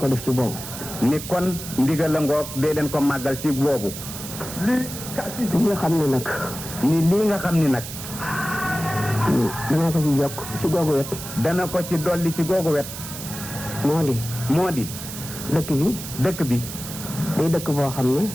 def ci boobu. ni kon ndigal la ngoog dee leen ko màggal ci boobu. li nga xam ne nag. ni lii nga xam ni nag. dana ko ci yokk ci googu wet. dana ko ci dolli ci googu wet. moo di. dëkk bi. dëkk bi. day dëkk boo xam ne.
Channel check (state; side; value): noise; right; hiss, 10 dB below the sound